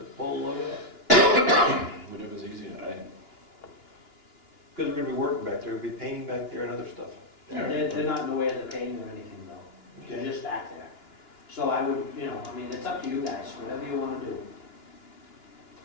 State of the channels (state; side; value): late; right; 2.9 ms